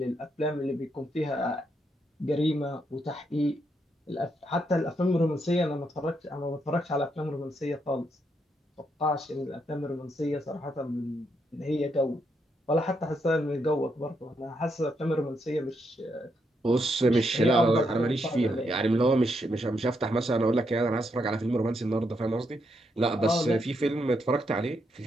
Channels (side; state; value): both; normal; correlation 0.79